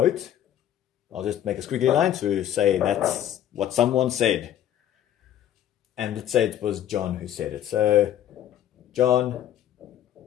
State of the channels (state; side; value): quieter; right; 11.2 dB